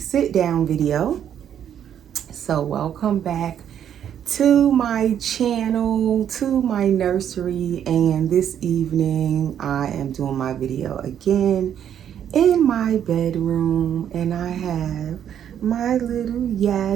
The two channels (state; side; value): quieter; left; 9.5 dB